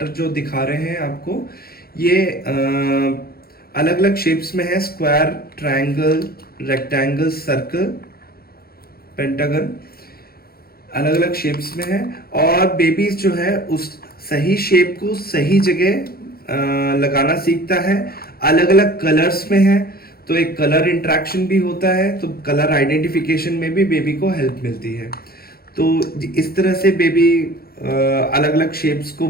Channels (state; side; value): late; right; 0.44 ms